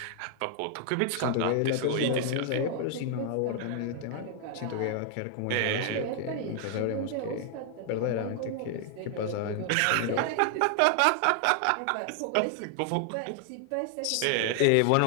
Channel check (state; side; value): different; both; correlation 0.00